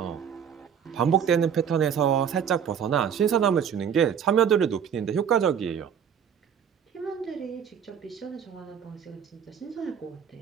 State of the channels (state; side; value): quieter; left; 7.9 dB